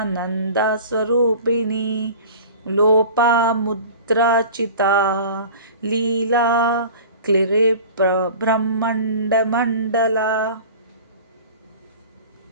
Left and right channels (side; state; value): both; inverted; correlation -0.40